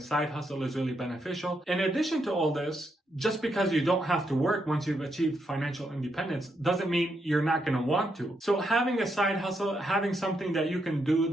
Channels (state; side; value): normal; both; correlation 0.80